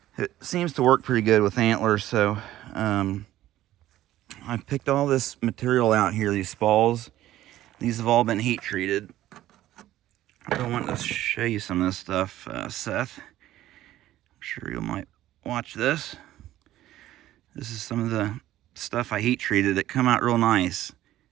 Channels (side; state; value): left; quieter; 14.1 dB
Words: It seems to work pretty good with antlers, so I've picked all this material out here, these spalls. These have all been heat treated. I want to show you some of this stuff, Seth. I'm sure you might watch this. This is some of the stuff I heat treated. It come out real nice.